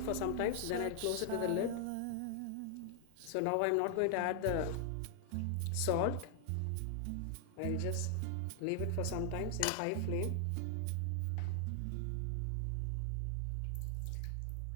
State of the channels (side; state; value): both; different; correlation 0.00